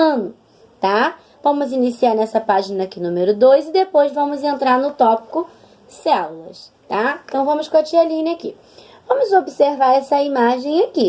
tá? Vamos iniciar nessa página aqui, número 2, e depois vamos entrar no tópico células, tá? Então, vamos com a tia Aline aqui. Vamos observar essa imagem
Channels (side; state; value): both; identical; correlation 1.00